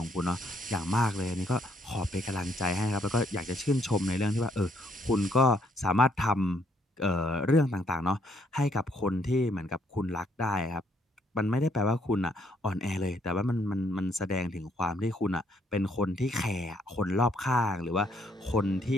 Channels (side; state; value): both; normal; correlation 0.69